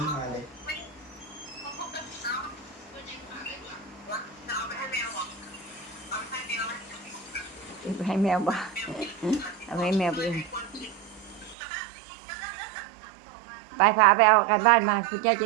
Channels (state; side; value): drops out; left; at 11.6 s